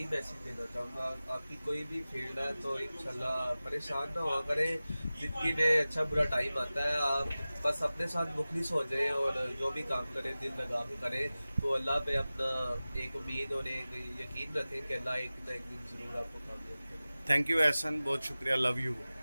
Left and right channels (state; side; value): inverted; both; correlation -0.97